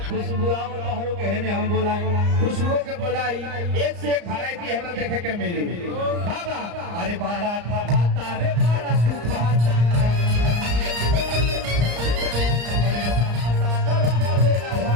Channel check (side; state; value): left; late; 34 ms